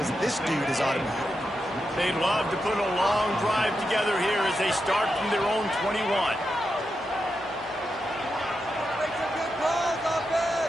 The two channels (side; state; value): both; normal; correlation 0.87